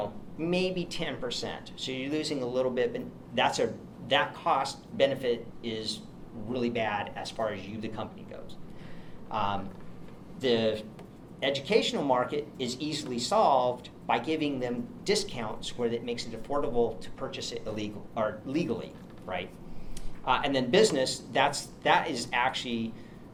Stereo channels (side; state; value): both; identical; correlation 1.00